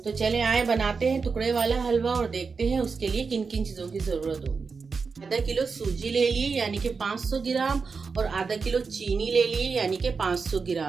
चले आए बनाते हैं टुकड़े वाला हलवा और देखते हैं उसके लिए किन किन चीज़ों की ज़रूरत होगी। आधा किलो सूजी ले लिए यानी कि 500 ग्राम, और आधा किलो चीनी ले लिए यानी कि 500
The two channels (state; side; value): quieter; left; 5.0 dB